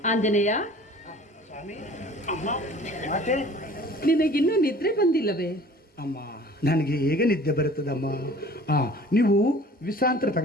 ಆಂಜನೇಯ, ನಿನಗಿನ್ನೂ ನಿದ್ರೆ ಬಂದಿಲ್ಲವೇ? ಅಮ್ಮ, ನನಗೆ ಹೇಗೆ ನಿದ್ದೆ ಬರುತ್ತದಮ್ಮ? ನೀವು ವಿಶ್ರಾಂತಿ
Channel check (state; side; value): normal; both; correlation 0.48